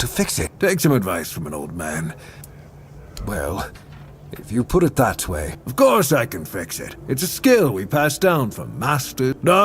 fix it? Take some advice from an old man. Well, If you put it that way, of course I can fix it. It's a skill we pass down from master.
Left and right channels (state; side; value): identical; both; correlation 1.00